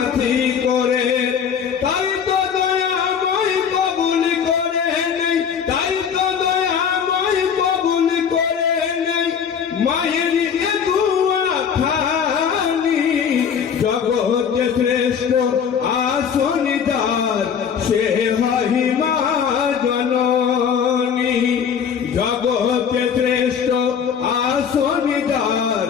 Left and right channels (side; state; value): right; quieter; 7.3 dB